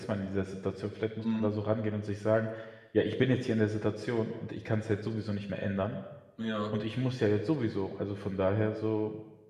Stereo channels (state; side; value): identical; both; correlation 1.00